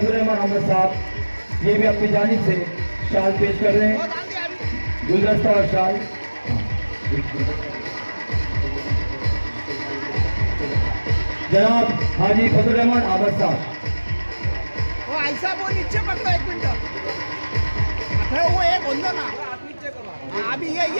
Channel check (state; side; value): inverted; both; correlation -1.00